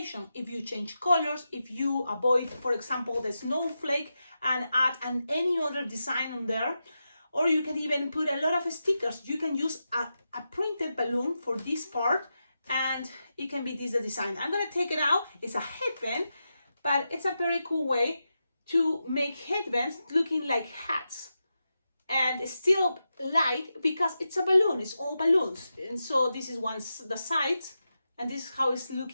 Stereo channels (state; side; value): inverted; both; correlation -0.89